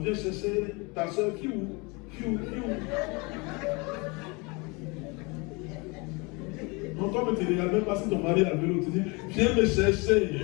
chercher ta soeur, qui où? Non, toi, tu ne regardes même pas si ton mari a le vélo, tu dis, viens me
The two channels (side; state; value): right; quieter; 28.3 dB